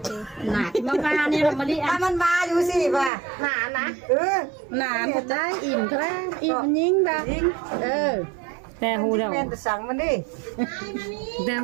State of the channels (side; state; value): left; drops out; at 3.1 s